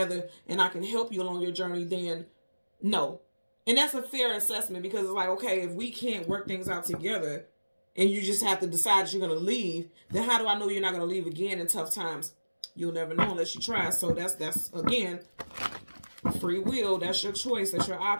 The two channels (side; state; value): both; inverted; correlation -1.00